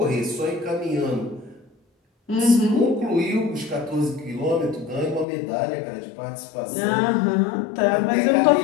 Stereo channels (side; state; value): right; drops out; at 5.2 s